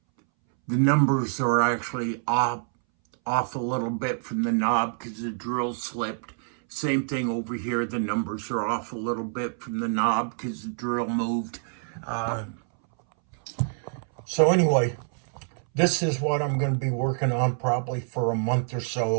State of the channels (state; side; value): silent; left; 61 dB below the other